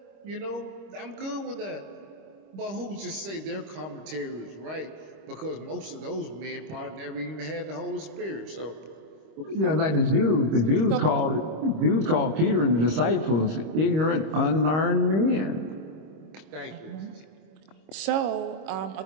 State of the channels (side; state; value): left; late; 26 ms